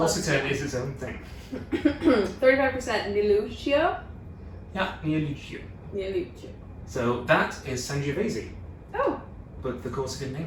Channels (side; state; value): both; identical; correlation 1.00